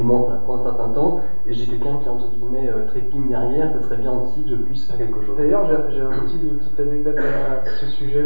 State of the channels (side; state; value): both; inverted; correlation -1.00